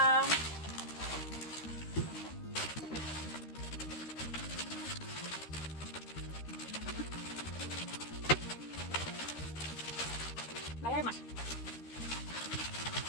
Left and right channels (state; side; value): late; right; 13 ms